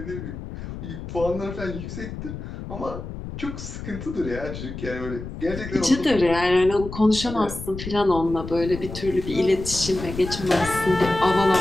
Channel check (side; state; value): left; noise; rumble, 9 dB below the sound